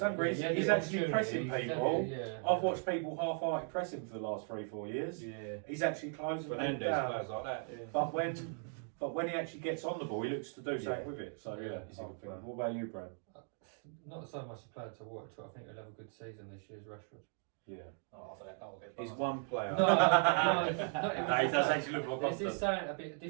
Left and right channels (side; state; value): left; silent; 53 dB below the other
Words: hungry. Yeah, He's the actually pressing opportunity, people. Yeah. I've watched people half-hearted pressing for the last 3-4 years. he? Yeah. He's actually closing people Fernandez down. players like that. Yeah. But when he actually gets on the ball, he looks to do something Yeah. with it. So Yeah, yeah, he's a I good think. player. What about you, Brad? Not so much a player to watch, but I think he'll have a good season this year. Is Rashford. Yeah. Oh, I thought that will get He's past. one player. No, He does actually look more There's confident. just something a bit